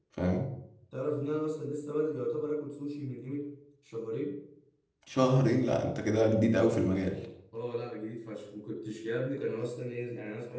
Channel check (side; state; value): both; identical; correlation 1.00